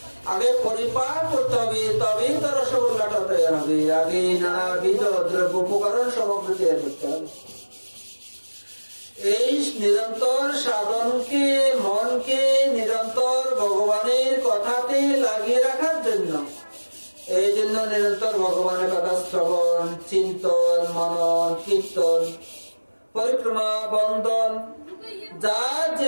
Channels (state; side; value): inverted; both; correlation -1.00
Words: আগে পরিপাক করতে হবে, তবেই তো রসগোল্লাটা তৈরি হবে। আগে নানাবিধ দ্রব্য উপকরণ সামগ্রী তৈরি করতে হবে। এই নিরন্তর সাধনকে, মনকে নিরন্তর ভগবানের কথাতে লাগিয়ে রাখার জন্য, এই জন্য নিরন্তর ভগবানের কথা শ্রবণ, চিন্তন, মনন, কীর্তন, পরিক্রমা, বন্দন, যার